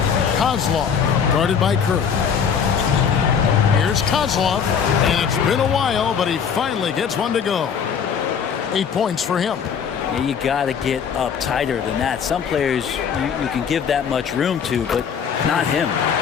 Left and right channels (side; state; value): right; quieter; 7.1 dB